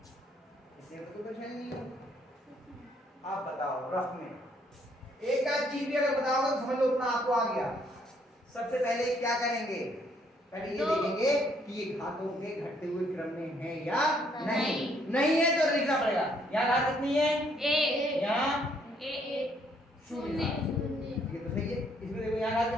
इससे तो कुछ है नहीं आप बताओ रफ में एक आध चीज भी अगर बताओगे तो समझ लो उतना आपको आ गया सबसे पहले क्या करेंगे पहले ये देखेंगे कि ये घातों के घटते हुए क्रम में है या नहीं नहीं है तो लिखना पड़ेगा यहाँ घात कितनी है 1 यहाँ 1 शून्य 0 ये तो सही है इसमें देखो यहाँ घात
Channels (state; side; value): normal; both; correlation 0.68